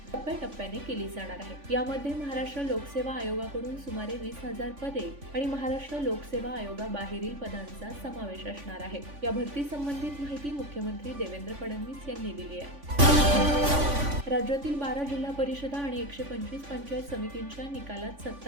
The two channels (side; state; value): left; late; 3.5 ms